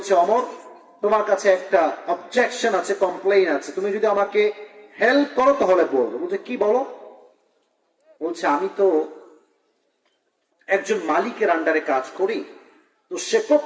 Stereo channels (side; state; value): both; identical; correlation 1.00